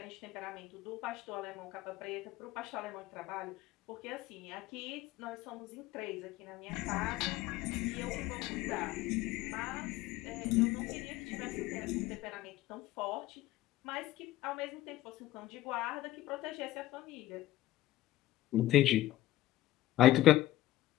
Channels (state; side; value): quieter; right; 15.5 dB